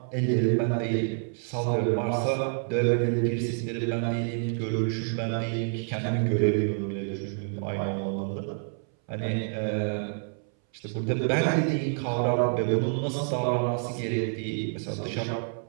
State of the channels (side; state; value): left; silent; 59 dB below the other